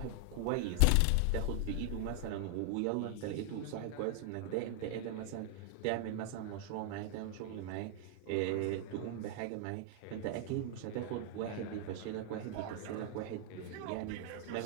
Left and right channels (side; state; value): both; different; correlation 0.00